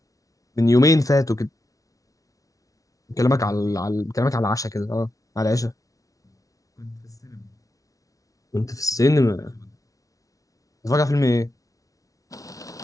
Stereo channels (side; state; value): right; late; 0.17 ms